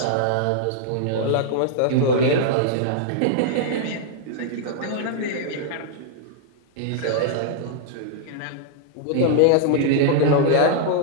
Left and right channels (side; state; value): both; different; correlation -0.01